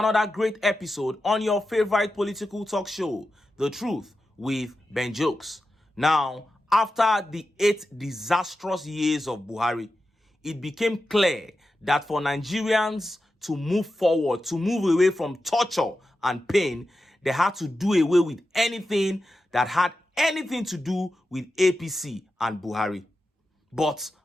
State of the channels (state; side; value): normal; both; correlation 0.91